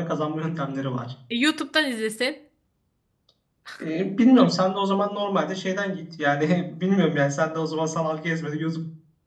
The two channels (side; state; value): both; identical; correlation 1.00